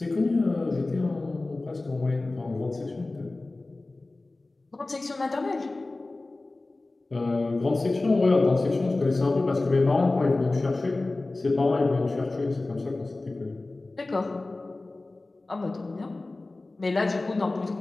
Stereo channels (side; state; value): right; quieter; 3.1 dB